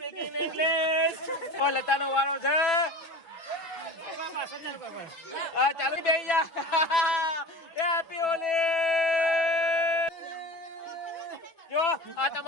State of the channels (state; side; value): late; right; 6.0 ms